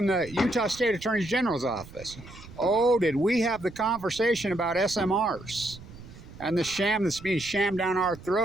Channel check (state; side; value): noise; right; rumble, 17 dB below the sound